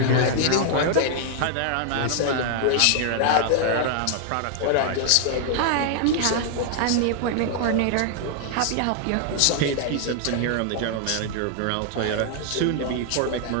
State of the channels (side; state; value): both; different; correlation 0.00